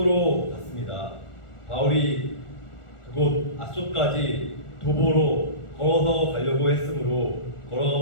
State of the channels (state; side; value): late; right; 1.4 ms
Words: 갔습니다. 바울이 그곳 아소까지 도보로 걸어가고자